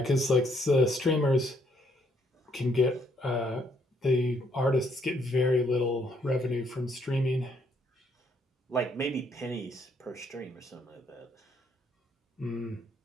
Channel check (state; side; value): normal; both; correlation 0.70